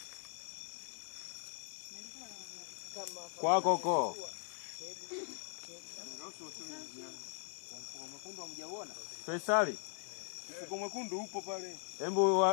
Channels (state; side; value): silent; right; 51 dB below the other